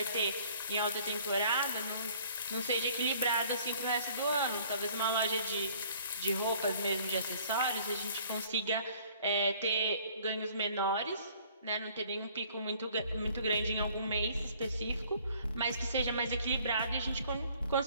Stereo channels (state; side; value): inverted; both; correlation -0.56